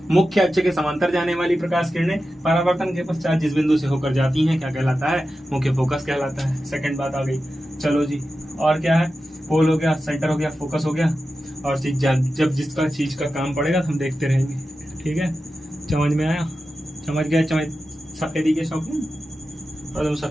मुख्य अक्ष के समांतर जाने वाली प्रकाश किरणें परावर्तन के पश्चात जिस बिंदु से होकर जाती हैं क्या कहलाता है? मुख्य फोकस कहलाता है। सेकंड बात आ गई। चलो जी, और क्या है? पोल हो गया, सेंटर हो गया, फोकस हो गया। और जब जिसका चीज का काम पड़ेगा तो हम देखते रहेंगे। ठीक है, समझ में आया? समझ गया? सफेदी के शौकीन और तुम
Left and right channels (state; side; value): normal; both; correlation 0.92